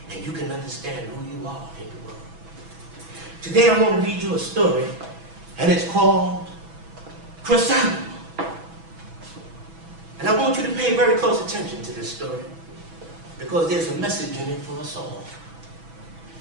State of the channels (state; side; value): late; left; 6.1 ms